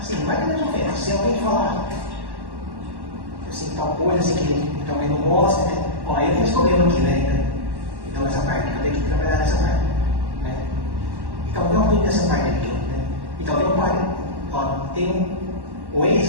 não vai que nos ofende. Se alguém falar assim, tal coisa assim, que também não gosta, né? Ó, eu tenho esse problema aqui, né? Então, essa parte, eu tenho que trabalhar nessa parte, né? Então, não tudo nessa parte aqui, né? Então, tem um pai, ó, tem o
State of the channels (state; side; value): late; left; 1.1 ms